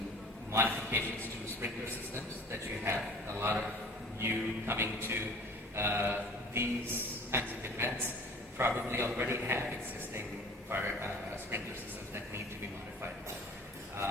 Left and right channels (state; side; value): normal; both; correlation 0.46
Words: modifications to sprinkler systems that you have. A lot of you coming to these kinds of events probably already have existing fire sprinkler systems that need to be modified.